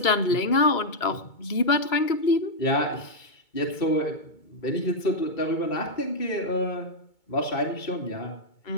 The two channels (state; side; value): late; right; 2.2 ms